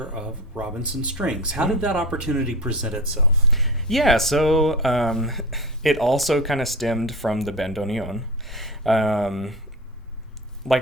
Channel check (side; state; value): both; normal; correlation 0.28